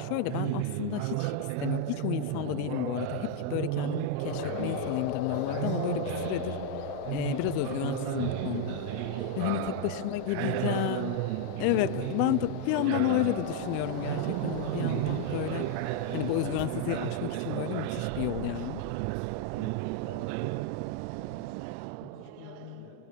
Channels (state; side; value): different; both; correlation 0.00